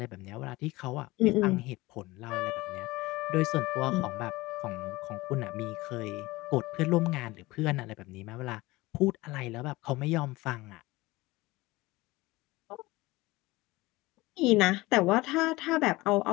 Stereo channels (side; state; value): right; quieter; 20.5 dB